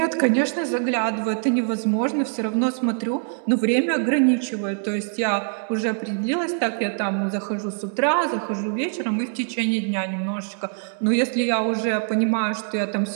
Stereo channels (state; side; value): silent; left; 63 dB below the other